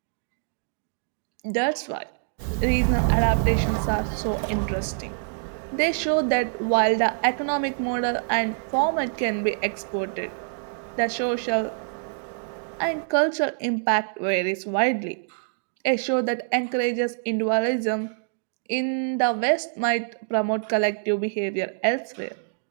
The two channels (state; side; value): silent; left; digital silence